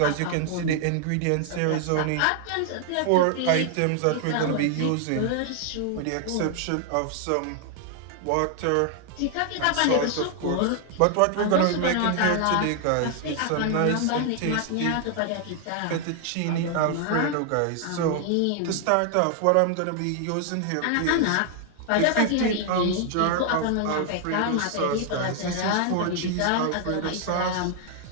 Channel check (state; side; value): different; both; correlation 0.00